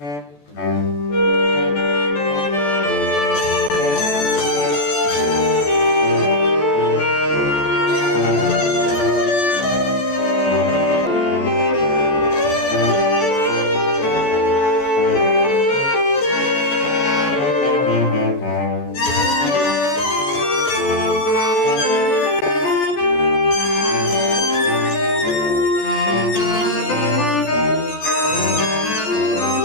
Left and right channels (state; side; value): late; right; 14 ms